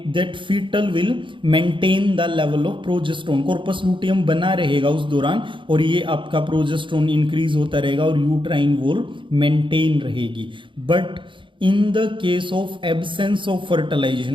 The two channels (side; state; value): left; late; 0.24 ms